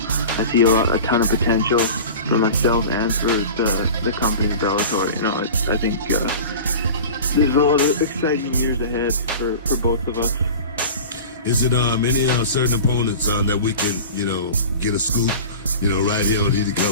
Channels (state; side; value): inverted; both; correlation -0.36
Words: I see a ton of potential for myself and for the company Bellator. You know, I think there's a lot of exciting years ahead for both of us. Is it any certain opponents that we can, you know, get a scoop, you know, right here on Heated